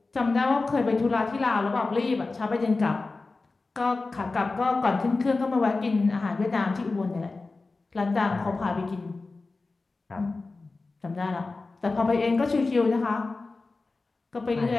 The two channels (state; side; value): quieter; right; 3.7 dB